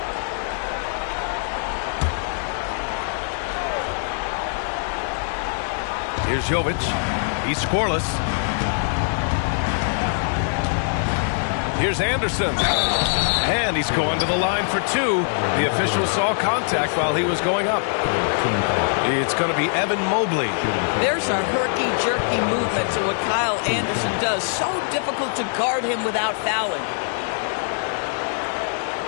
Here's Jovic. He's scoreless. Here's Anderson. And he's going to the line for 2. The official saw contact while he was going up. It's going to be Evan Mobley. There's a herky-jerky movement to what Kyle Anderson does. So difficult to guard him without fouling.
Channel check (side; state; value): right; silent; digital silence